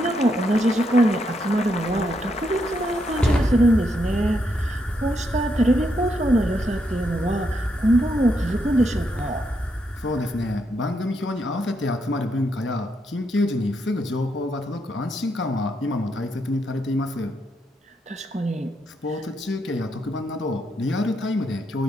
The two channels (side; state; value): both; normal; correlation 0.79